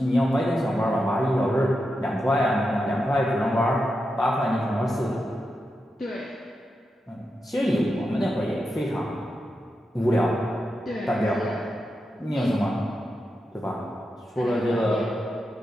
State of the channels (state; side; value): normal; both; correlation 0.88